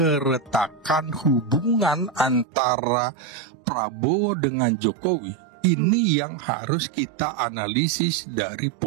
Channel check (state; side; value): drops out; left; at 2.5 s